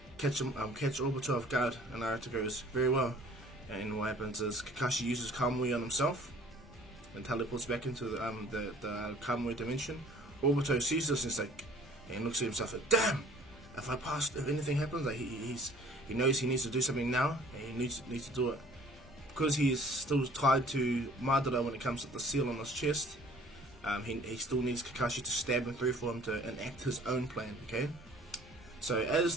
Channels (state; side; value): normal; both; correlation 0.52